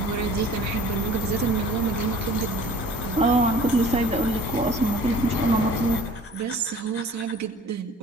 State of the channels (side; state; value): both; normal; correlation 0.48